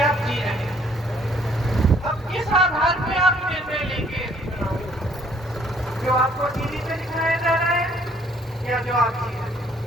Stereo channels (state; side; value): normal; both; correlation 0.62